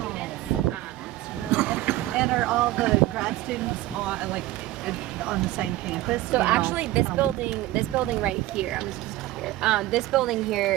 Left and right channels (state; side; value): quieter; left; 16.5 dB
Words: And are all the grad students on the same campus? So You know? actually, this building right here, I'm just here. This building